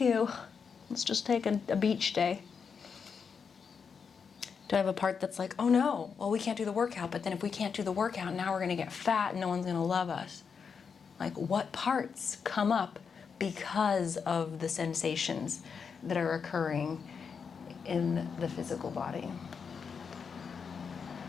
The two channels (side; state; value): right; quieter; 6.1 dB